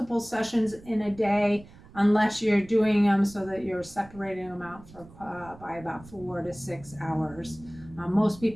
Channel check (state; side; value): noise; right; rumble, 21 dB below the sound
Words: sessions in a day unless you're doing them so that you're separating them out by about 4 to 6 hours. Most